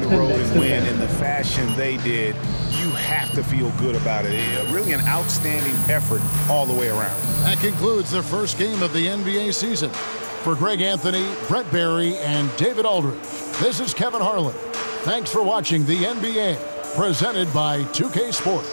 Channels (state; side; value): inverted; both; correlation -1.00